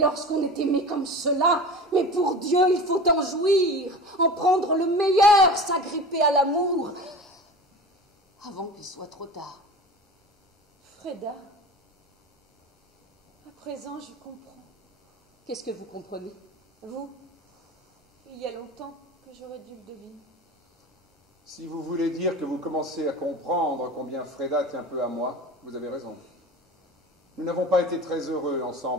est aimé comme cela, mais pour Dieu, il faut en jouir, en prendre le meilleur, s'agripper à l'amour, avant qu'il soit trop tard. Freda, à présent, je comprends. Qu'est-ce que vous comprenez? Vous, il y a longtemps que j'aurais dû le deviner. Si vous voulez dire que vous commencez à comprendre combien Freda tient peu à moi, vous avez raison. Nous n'avons pas été très heureux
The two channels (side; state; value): both; normal; correlation 0.34